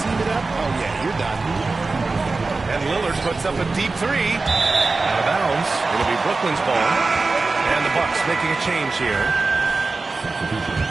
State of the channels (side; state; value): left; quieter; 3.7 dB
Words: it up? Oh, yeah, you're done. And Lillard puts up a deep three. Out of bounds. It'll be Brooklyn's ball. And the Bucks making a change here.